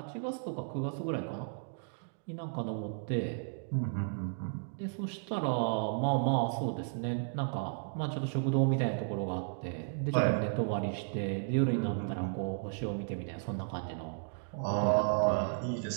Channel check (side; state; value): left; silent; digital silence